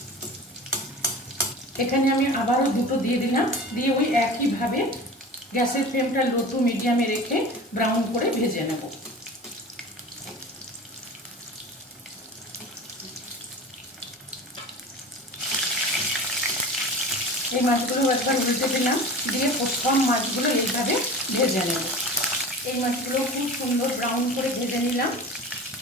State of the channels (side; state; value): both; normal; correlation 0.35